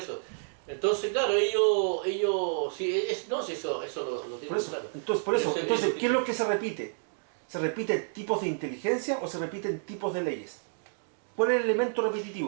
Entonces, claro, ellos sí, sí, eso lo tienen Por eso, claro. entonces, ¿qué es lo que se repite? ¿Se repiten tipos de inteligencia o se repiten tipos de leyes? ¿Cuál es el elemento repetitivo?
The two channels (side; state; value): left; silent; digital silence